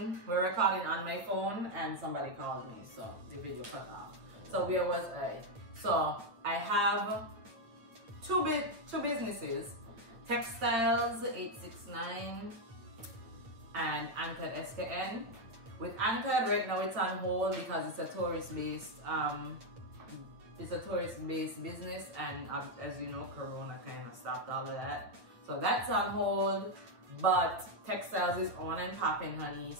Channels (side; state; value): left; late; 8.6 ms